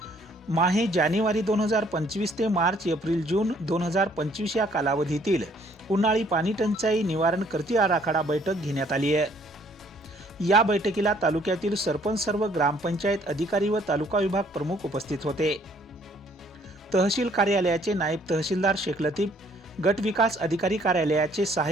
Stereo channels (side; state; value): both; normal; correlation 0.62